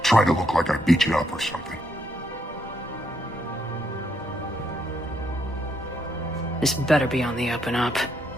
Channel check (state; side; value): normal; both; correlation 0.76